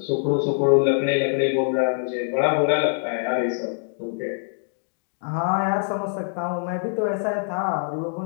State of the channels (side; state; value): right; silent; digital silence